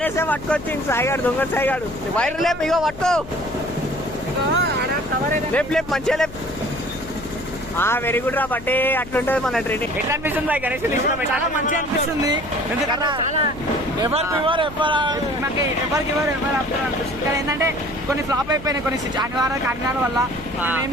పట్టుకొచ్చింది సాయిగాడు, దొంగ సాయిగాడు. వైర్ లేపు, ఇగో పట్టుకో, లేపు లేపు మంచిగా లేపు. వెరీ గుడ్ రా బట్టే. అట్లుంటది మన ట్రైనింగ్. ఎట్లా అనిపిస్తుంది బాయ్ గణేష్? చాలా మంచిగా అనిపిస్తుంది. ఎందుకంటే ఎవరు అనిపిస్తుంది. కానీ ఏంటంటే కొన్ని ఫ్లాప్ అయిపోయినాయి, కొన్ని అనివార్య కారణాల వల్ల ఏం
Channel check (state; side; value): noise; left; hum, 15 dB below the sound